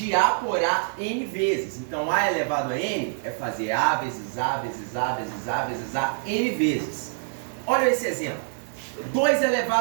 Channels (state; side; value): silent; left; digital silence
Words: A por A N vezes. Então, A elevado a N é fazer A vezes A vezes A vezes A vezes A N vezes. Olha esse exemplo. 2